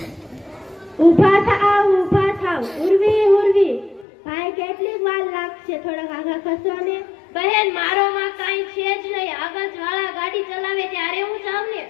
ઊભા થાવ ઉર્વી ઉર્વી। ભાઈ કેટલી વાર લાગશે? થોડાક આગળ ખસો ને। બહેન મારો માં કાઈ છે જ નહીં। આગળ વાળા ગાડી ચલાવે ત્યારે હું જાઉં ને।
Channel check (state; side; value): drops out; right; at 4.0 s